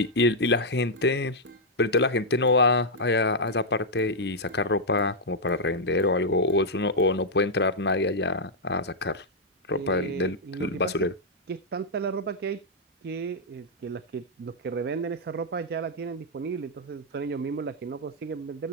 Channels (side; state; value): both; normal; correlation -0.05